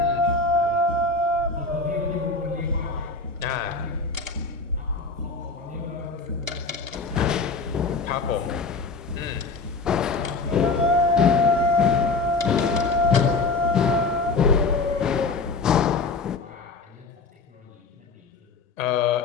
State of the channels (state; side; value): quieter; right; 3.9 dB